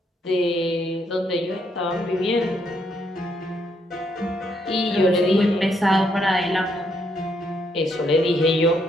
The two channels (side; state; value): both; normal; correlation 0.74